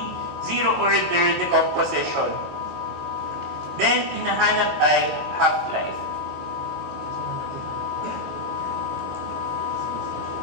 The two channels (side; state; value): left; late; 22 ms